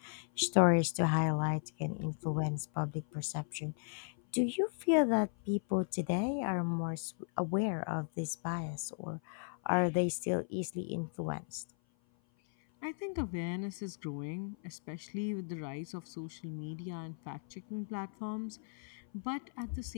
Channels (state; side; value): silent; right; 54 dB below the other